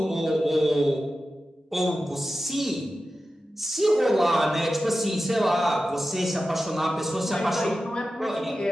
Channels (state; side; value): normal; both; correlation 0.93